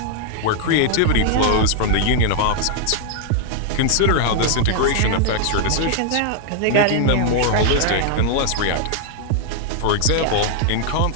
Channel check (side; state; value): both; different; correlation 0.00